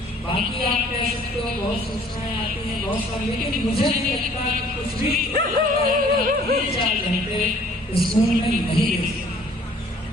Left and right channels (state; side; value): normal; both; correlation 0.55